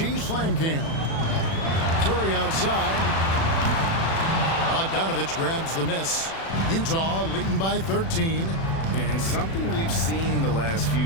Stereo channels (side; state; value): right; late; 36 ms